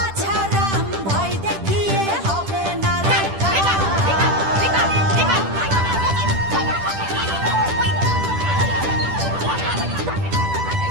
ভয় দেখিয়ে হবে না রে কাম।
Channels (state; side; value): late; left; 10 ms